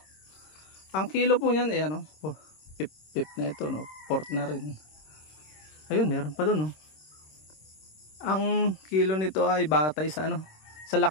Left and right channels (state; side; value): late; right; 26 ms